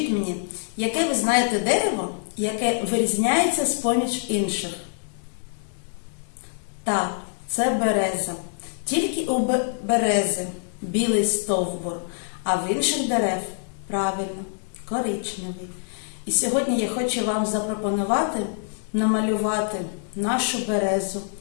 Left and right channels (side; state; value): right; silent; digital silence